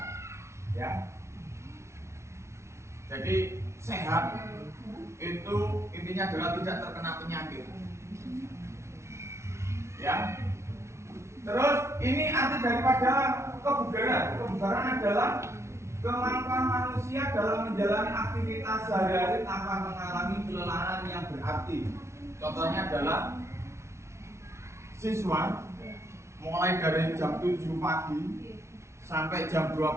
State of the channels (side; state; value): left; late; 0.13 ms